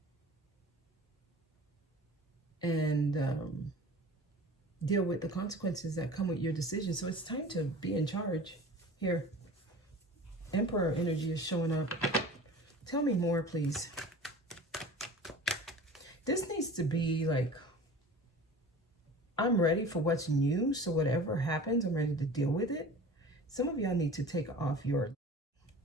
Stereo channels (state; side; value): normal; both; correlation 0.39